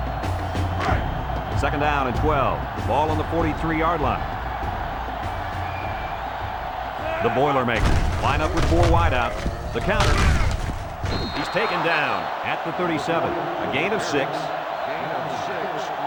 Second down and 12. Ball on the 43-yard line. The Boilermakers line up with 4 wideouts. The counter. He's taken down at the 37. A gain of 6. Gain of 6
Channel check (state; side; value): identical; both; correlation 1.00